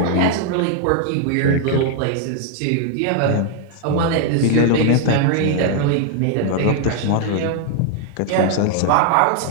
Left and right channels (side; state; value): both; different; correlation 0.00